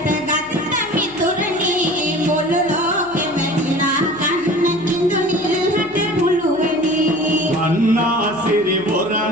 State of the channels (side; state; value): left; noise; hum, 26 dB below the sound